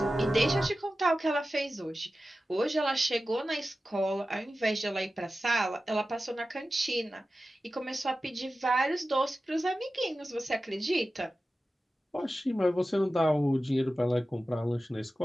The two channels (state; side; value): normal; both; correlation 0.94